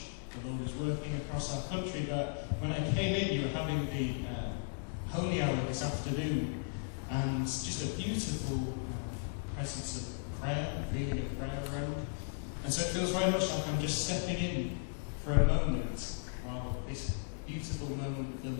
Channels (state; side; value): silent; right; digital silence